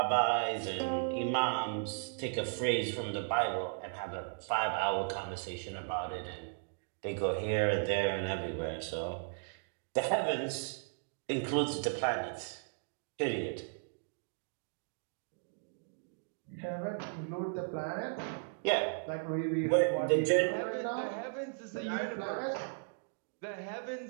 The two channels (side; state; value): left; silent; digital silence